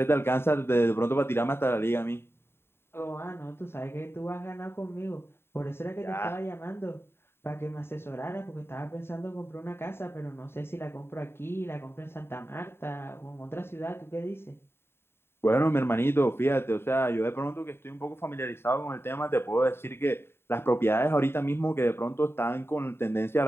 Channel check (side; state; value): right; late; 0.11 ms